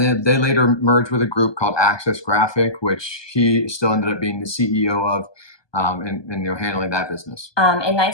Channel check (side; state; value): right; late; 1.2 ms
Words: then they later merged with a group called Access Graphic, which he still ended up being the CEO of. And handling that business. In